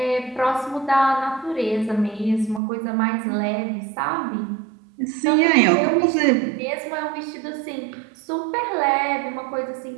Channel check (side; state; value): left; drops out; at 2.6 s